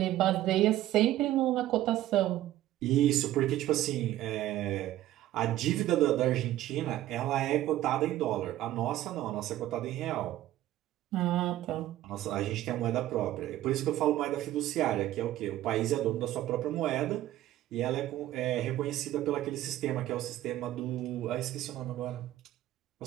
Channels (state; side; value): quieter; left; 14.1 dB